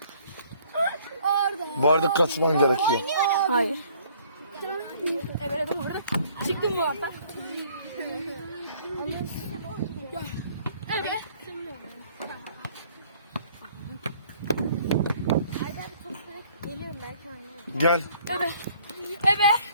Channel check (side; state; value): both; inverted; correlation -0.59